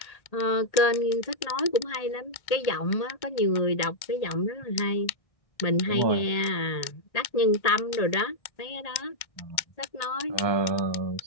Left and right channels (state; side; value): late; right; 1.8 ms